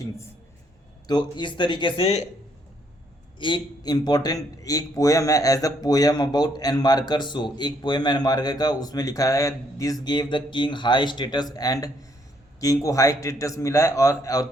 तो इस तरीके से एक पोएम है, as a poem about Enmerkar. So एक पोएम एन मार्कर का, उसमें लिखा है this gave the king high status and king को हाई स्टेटस मिला है और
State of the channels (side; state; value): both; normal; correlation 0.70